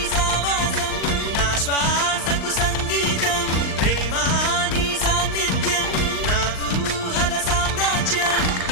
సావాసం నా శ్వాసకు సంగీతం ప్రేమా నీ సాన్నిధ్యం నా ఊహల సామ్రాజ్యం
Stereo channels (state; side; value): late; right; 39 ms